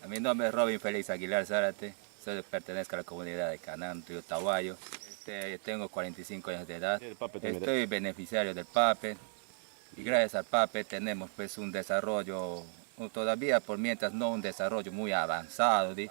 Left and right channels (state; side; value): silent; left; 55 dB below the other